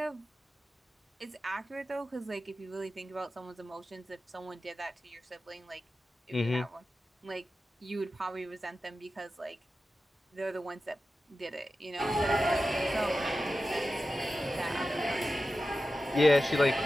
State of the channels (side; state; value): both; normal; correlation 0.93